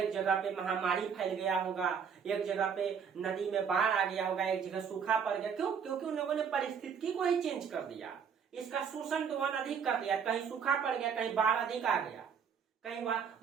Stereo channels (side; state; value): left; quieter; 6.9 dB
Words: पे महामारी फैल गया होगा, एक जगह पे नदी में बाढ़ आ गया होगा, एक जगह सूखा पड़ गया। क्यों? क्योंकि उन लोगों ने परिस्थिति को ही चेंज कर दिया, इसका शोषण दोहन अधिक कर दिया। कहीं सूखा पड़ गया, कहीं बाढ़ अधिक आ गया, कहीं